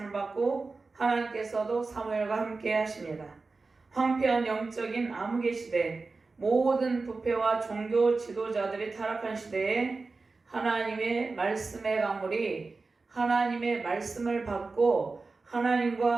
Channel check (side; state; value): left; quieter; 3.9 dB